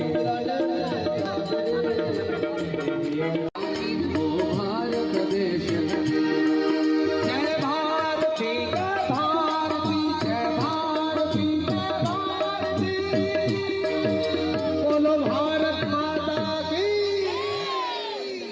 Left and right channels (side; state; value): both; identical; correlation 1.00